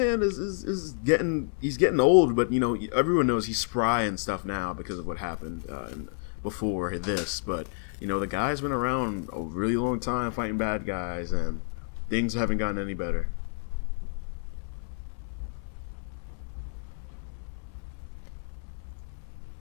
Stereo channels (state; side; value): silent; right; 58 dB below the other